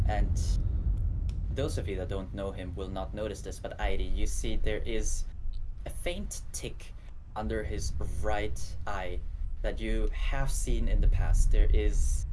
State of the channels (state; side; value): identical; both; correlation 1.00